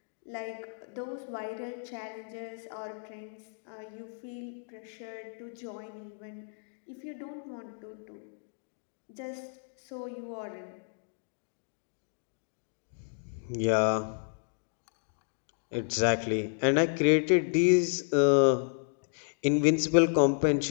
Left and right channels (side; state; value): right; silent; digital silence